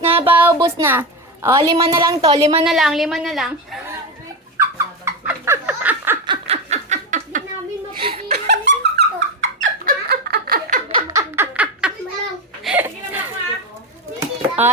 na, paubos na. Oh, 5 na lang to. 5 na lang, 5 na lang. Hindi namin mapigilan ito.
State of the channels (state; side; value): normal; both; correlation 0.16